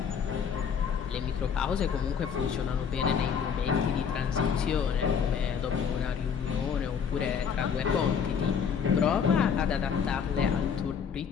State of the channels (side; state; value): right; quieter; 7.0 dB